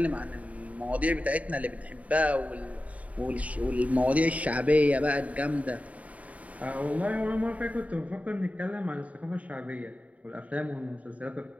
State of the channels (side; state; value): left; late; 0.069 ms